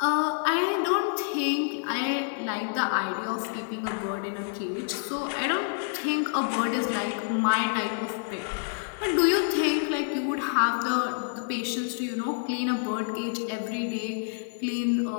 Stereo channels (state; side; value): silent; right; digital silence